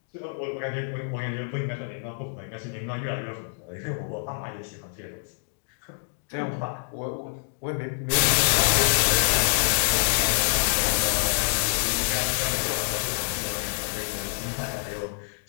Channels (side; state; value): right; silent; digital silence